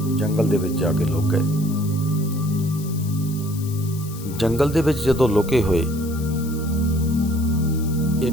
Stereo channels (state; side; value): noise; left; hiss, 16 dB below the sound